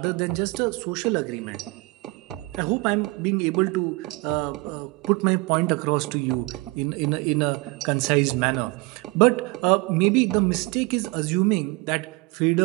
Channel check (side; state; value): left; quieter; 24.7 dB